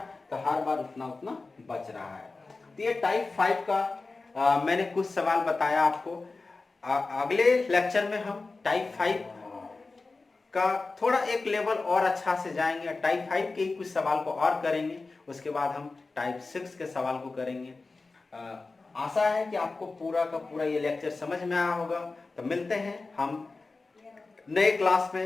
तो हर बार उतना उतना बच रहा है। तो ये टाइप 5 का मैंने कुछ सवाल बताया आपको। अगले लेक्चर में हम टाइप 5 का थोड़ा एक लेवल और अच्छा से जाएंगे, टाइप 5 के कुछ सवाल को और करेंगे, उसके बाद हम टाइप 6 के सवाल को करेंगे। आशा है कि आपको पूरा का पूरा ये लेक्चर समझ में आया होगा। तो मिलते हैं हम नए क्लास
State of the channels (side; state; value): right; quieter; 3.7 dB